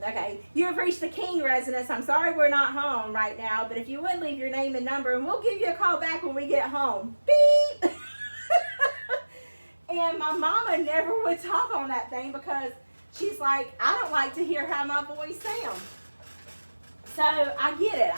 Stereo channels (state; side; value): inverted; both; correlation -1.00